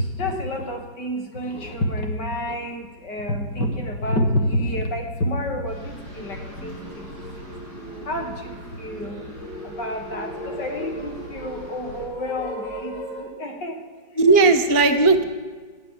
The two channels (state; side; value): late; right; 4.5 ms